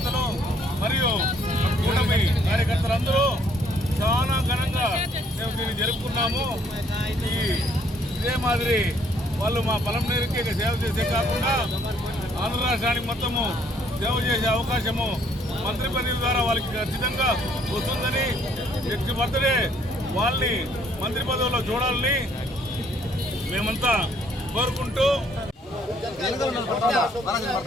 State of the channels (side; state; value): both; normal; correlation 0.65